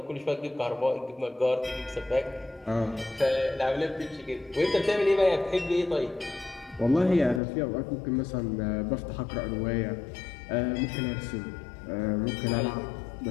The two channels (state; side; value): drops out; right; at 7.4 s